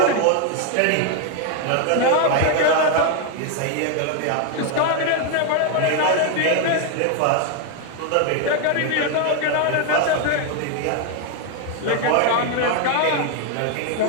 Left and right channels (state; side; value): different; both; correlation 0.01